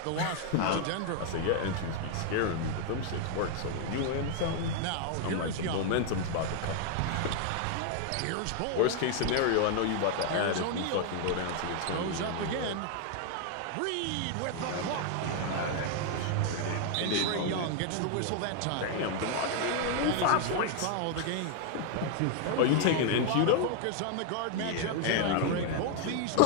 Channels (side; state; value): both; different; correlation 0.00